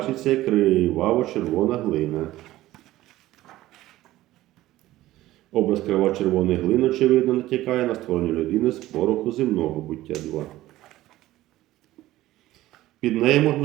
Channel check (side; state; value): left; quieter; 15.9 dB